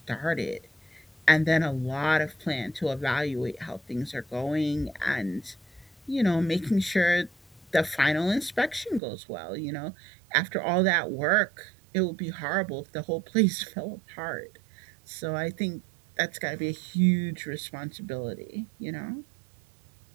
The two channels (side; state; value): left; drops out; at 9.0 s